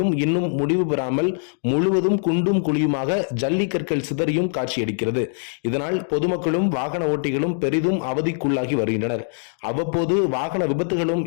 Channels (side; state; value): right; silent; digital silence